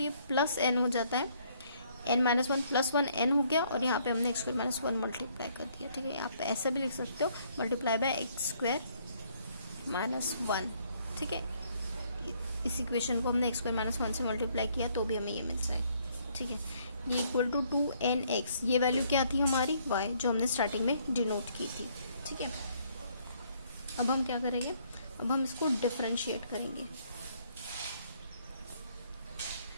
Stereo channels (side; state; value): both; inverted; correlation -0.66